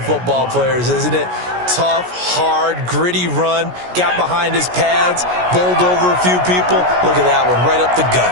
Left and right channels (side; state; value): left; late; 17 ms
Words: football players, isn't it? Tough, hard, gritty run, got behind his pads, bowled over a few people. Look at that one, right up the